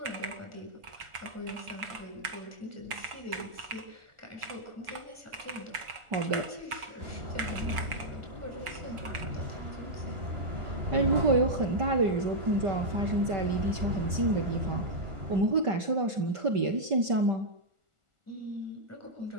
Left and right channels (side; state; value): left; late; 1.4 ms